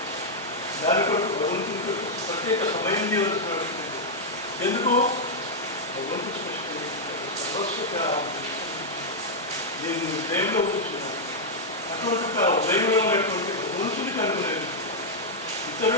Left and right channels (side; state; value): both; normal; correlation -0.04